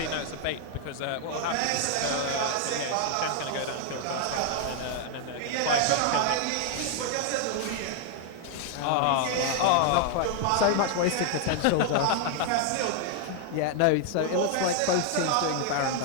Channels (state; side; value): different; both; correlation 0.00